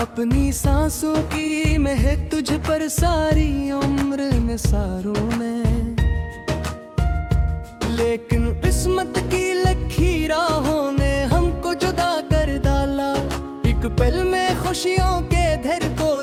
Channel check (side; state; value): both; identical; correlation 1.00